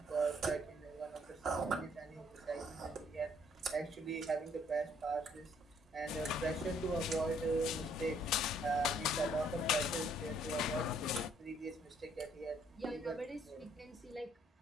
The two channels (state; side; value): normal; both; correlation 0.65